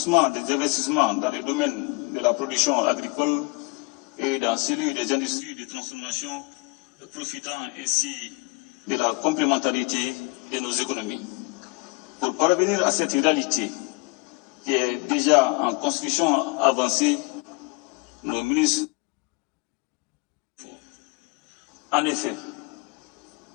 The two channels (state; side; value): quieter; right; 28.6 dB